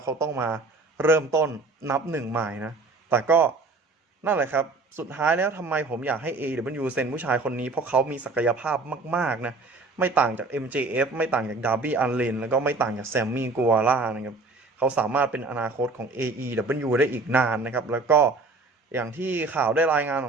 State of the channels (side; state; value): left; quieter; 3.6 dB